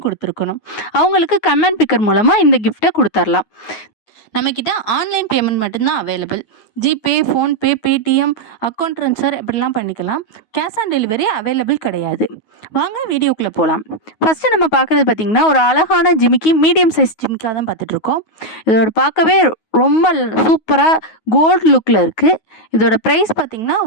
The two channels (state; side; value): late; right; 9.4 ms